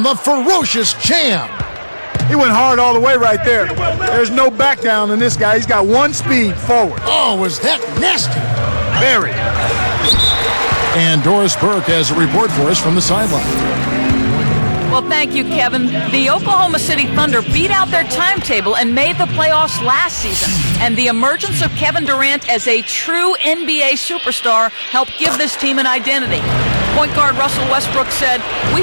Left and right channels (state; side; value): inverted; both; correlation -1.00